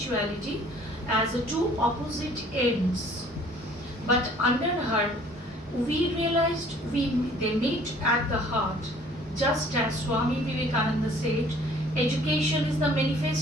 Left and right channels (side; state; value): both; normal; correlation 0.55